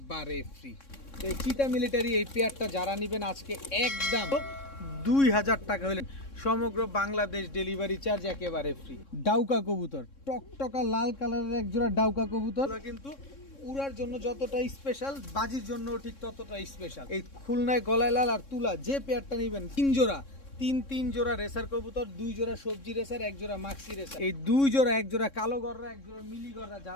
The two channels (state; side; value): late; right; 3.6 ms